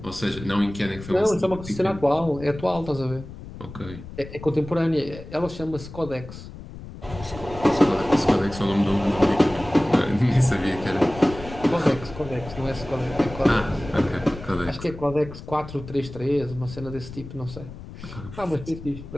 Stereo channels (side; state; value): left; noise; rumble, 13 dB below the sound